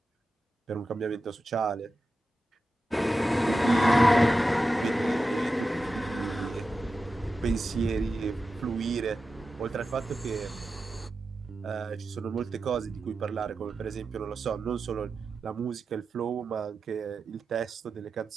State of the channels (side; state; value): both; normal; correlation 0.92